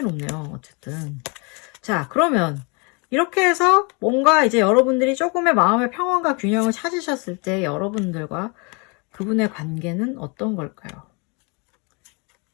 어쨌든. 자, 그러면 이렇게 해서 뭔가 이제 여러분들이 조금의 마음의 평온과 균형을 찾으셨을 때 여러분들과 그분의 관계는 어떤 걸까요?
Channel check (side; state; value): right; quieter; 31.7 dB